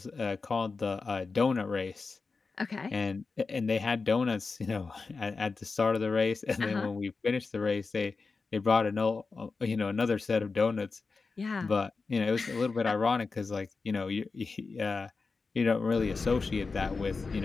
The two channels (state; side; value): quieter; right; 4.3 dB